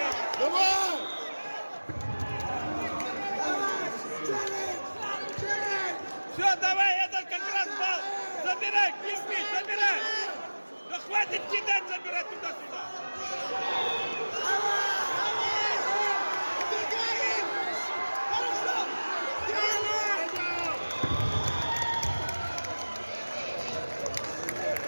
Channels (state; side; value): inverted; both; correlation -1.00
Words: Давай! Все, давай, этот как раз балл! Забирай, кирпич, забирай! Да хватит кидать, забирать туда-сюда!